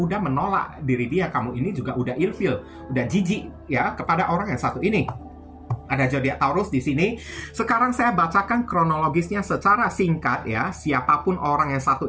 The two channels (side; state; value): both; identical; correlation 1.00